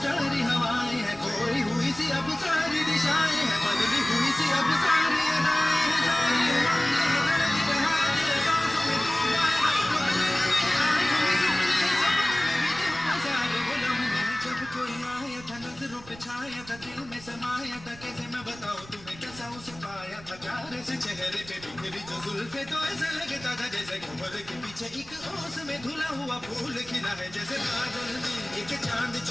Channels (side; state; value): right; noise; rumble, 20 dB below the sound